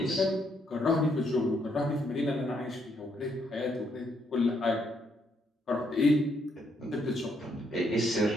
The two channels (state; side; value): normal; both; correlation 0.74